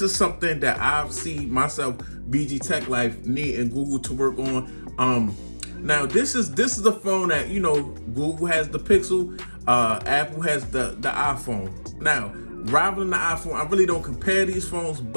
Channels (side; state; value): both; inverted; correlation -1.00